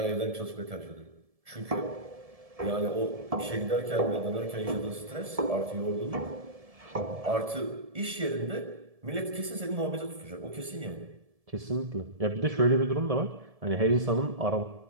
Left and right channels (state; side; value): late; left; 1.7 ms